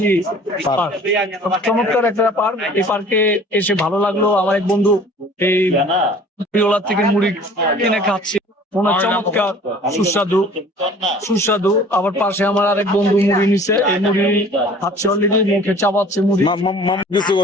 পার্ক। চমৎকার একটা পার্ক। এই পার্কে এসে ভালো লাগলো। আমার এক বন্ধু এই পিওলার থেকে মুড়ি কিনে খাচ্ছে, ওনার চমৎকার সুস্বাদু সুস্বাদু। আবার পাশে আমার আরেক বন্ধু মুড়ি নিছে, এই মুড়ি খাচ্ছে অলরেডি, মুখে চাপাচ্ছে মুড়ি।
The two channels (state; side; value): normal; both; correlation 0.48